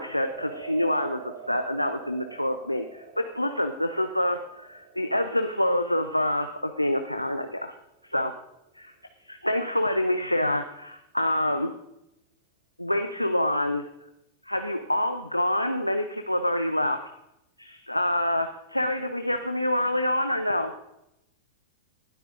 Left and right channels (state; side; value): inverted; both; correlation -0.87